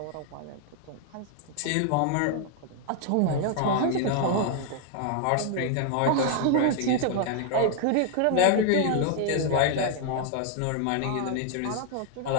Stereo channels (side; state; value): both; different; correlation 0.00